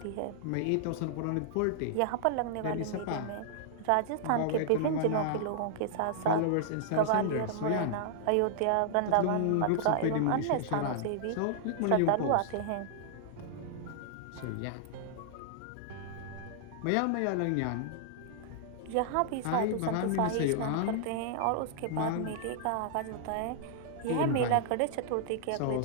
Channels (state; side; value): different; both; correlation -0.01